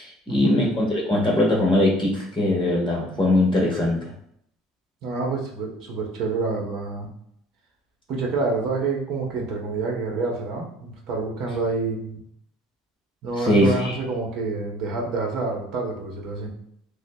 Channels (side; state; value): both; normal; correlation 0.54